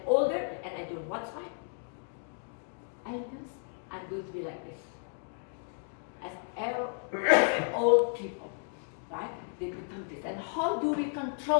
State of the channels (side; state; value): right; silent; 56 dB below the other